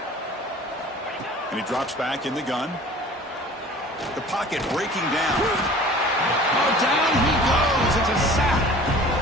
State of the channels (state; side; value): normal; both; correlation 0.45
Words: And he drops back in the gun. The pocket breaking down. Oh, down he goes. It's a sack.